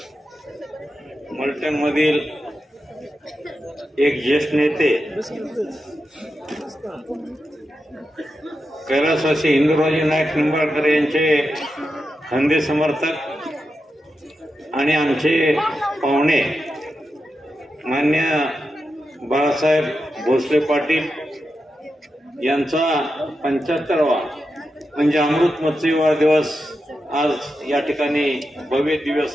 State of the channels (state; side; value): normal; both; correlation 0.89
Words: मलटणमधील एक ज्येष्ठ नेते कैलासवासी इंदुराजी नाईक निंबाळकर यांचे खंदे समर्थक आणि आमचे पाहुणे मान्य बाळासाहेब भोसले पाटील यांचा 75वा म्हणजे अमृत महोत्सव दिवस आज या ठिकाणी भव्य दिव्य